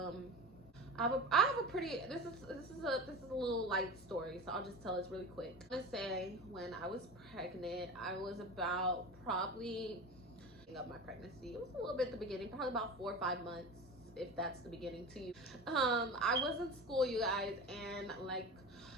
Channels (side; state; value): both; normal; correlation 0.31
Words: I have a pretty, this is a little light story, so I'll just tell this really quick. I'm gonna say, when I was pregnant, I was about probably of my pregnancy, it was a little bit at the beginning, probably about 4 or 5 months, if that's the beginning to you. I was in school, you guys, and like